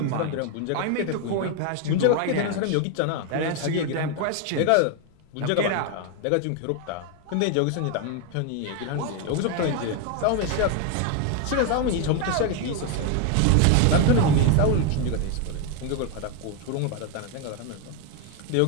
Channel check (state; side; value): different; both; correlation 0.01